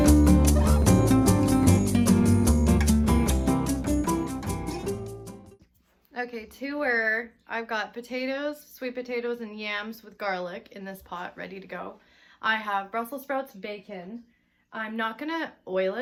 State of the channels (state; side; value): identical; both; correlation 1.00